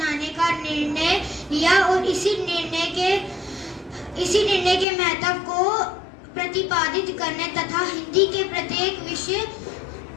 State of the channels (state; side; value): drops out; right; at 4.9 s